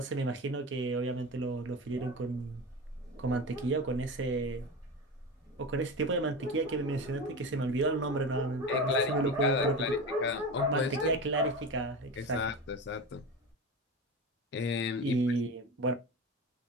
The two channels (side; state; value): both; normal; correlation 0.26